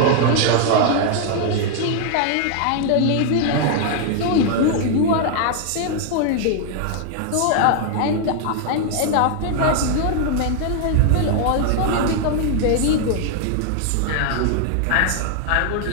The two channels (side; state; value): both; different; correlation 0.00